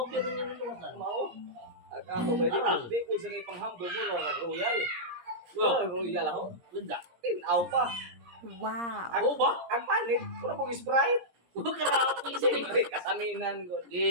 gyud nga nalawasan. Mao. Ako ba Arang. di ko sa kay panghambog mo na royal. Oh. Royal ako. Ganda. Tinaw pa. Wow! Ako ba? Ang panit, puro mong Sprite. Grabe sini. Siyempre, kasaminan ko.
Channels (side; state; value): left; late; 17 ms